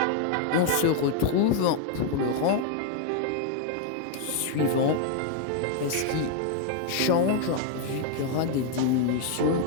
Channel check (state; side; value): different; both; correlation 0.00